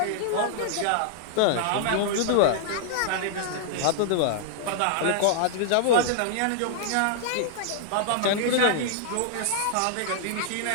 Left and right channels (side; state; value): both; different; correlation -0.01